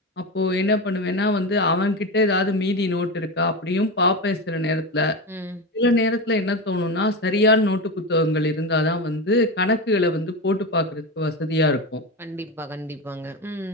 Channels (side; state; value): both; normal; correlation 0.20